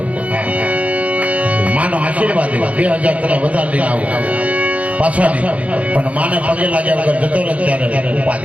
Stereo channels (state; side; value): late; left; 0.066 ms